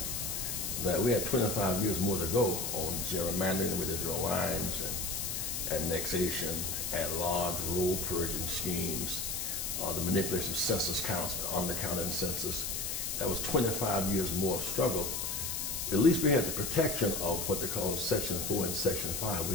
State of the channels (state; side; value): noise; left; hiss, 2 dB below the sound